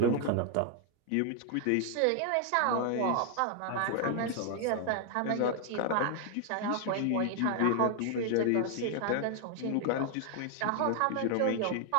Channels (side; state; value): both; different; correlation 0.00